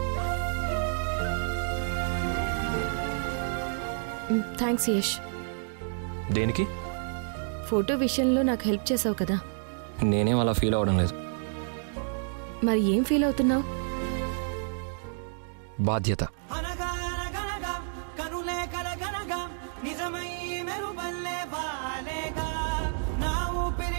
థ్యాంక్స్ యష్. దేనికి? ఫోటో విషయంలో నాకు హెల్ప్ చేసావు కదా. నేనేం అలా ఫీల్ అవ్వడం లేదు. మరి ఏం ఫీల్ అవుతున్నావు? బాధ్యత.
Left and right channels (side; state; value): left; silent; digital silence